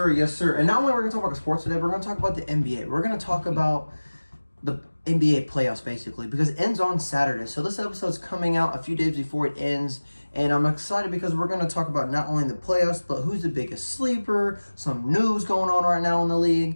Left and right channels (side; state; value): both; inverted; correlation -1.00